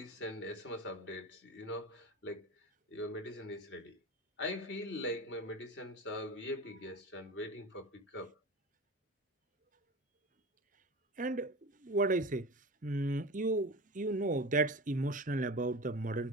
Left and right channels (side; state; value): both; normal; correlation 0.31